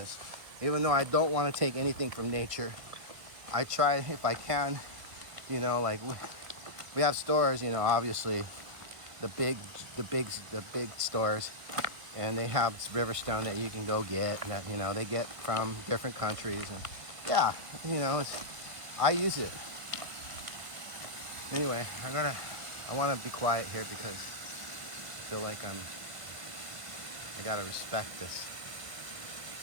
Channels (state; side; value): late; left; 1.9 ms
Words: Even though I don't want to take anything from nature, I try if I can, like we have stores, obviously the big stores, and they have Riverstone that you can go get, and that they get from different countries, and yeah, I use it. Anyway, I want to be quiet here because I feel like I gotta respect this.